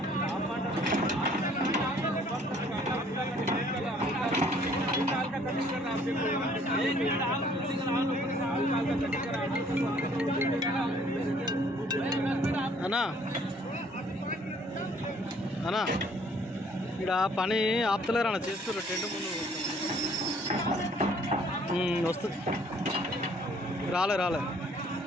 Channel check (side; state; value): both; normal; correlation 0.60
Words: అన్నా అన్నా ఇక్కడ పని ఆపుతలేరు అన్న, చేస్తారు టెంట్ ముందు వస్తుంది. రాలే